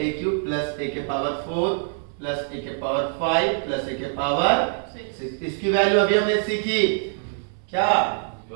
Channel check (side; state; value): left; silent; 63 dB below the other